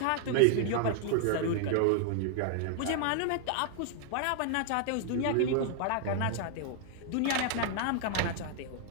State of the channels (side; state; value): both; different; correlation 0.00